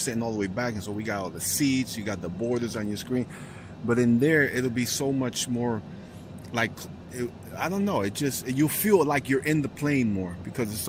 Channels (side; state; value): both; identical; correlation 1.00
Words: all the way back, and so we got all the seats, you got the borders on your screen, but in there it'll be so much more like I don't know. It just you feel like you're in the plane more because it's